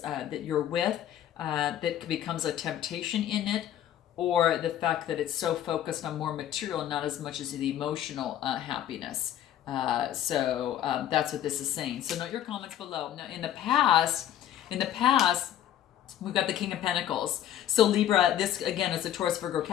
that you're with. That becomes a temptation in it, or the fact that it's so focused on more material and not as much as the emotional happiness. So that's what this is saying. So note your comments below. Now in the past, we've got the King of Pentacles. So Libra, this again is a Taurus, Virgo,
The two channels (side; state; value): right; quieter; 11.3 dB